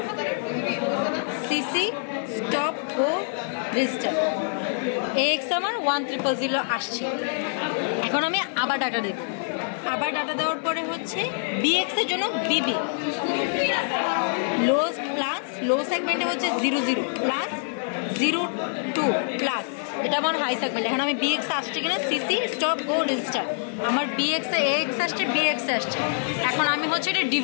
সিসি স্টপ গো রেজিস্টার AX আমার 1000 আসছে। এখন আমি আবার ডাটা দেব, আবার ডাটা দেওয়ার পরে হচ্ছে BX এর জন্য BB লো প্লাস লো সেগমেন্টে হচ্ছে 00 প্লাস 02 প্লাস এটা আমার হাই সেগমেন্ট। এখন আমি BX আসছে কিনা সিসি স্টপ গো রেজিস্টার আমার BX এ AX আসছে BX আসছে। এখন আমি হচ্ছে এটা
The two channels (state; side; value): silent; right; 61 dB below the other